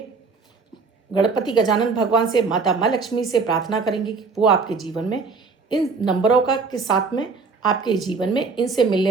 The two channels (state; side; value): quieter; left; 4.6 dB